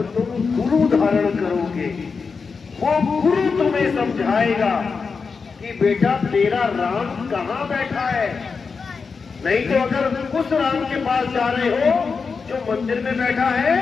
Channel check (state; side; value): quieter; right; 5.1 dB